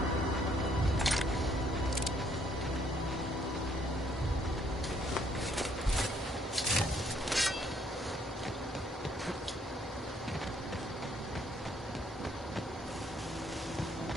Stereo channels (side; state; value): both; normal; correlation 0.67